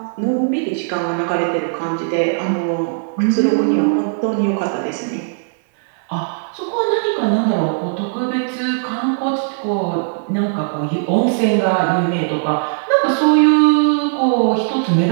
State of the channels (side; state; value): left; silent; 59 dB below the other